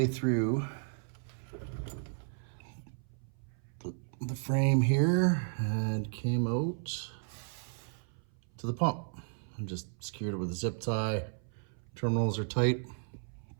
through the frame here and came out to the pump. I'm just secured it with a zip tie. Terminals are tight.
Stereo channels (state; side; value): silent; left; 55 dB below the other